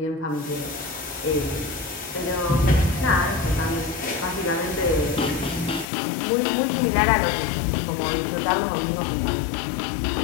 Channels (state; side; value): drops out; right; at 5.9 s